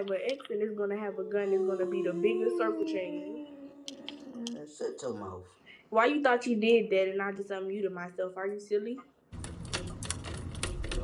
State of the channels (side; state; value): both; identical; correlation 1.00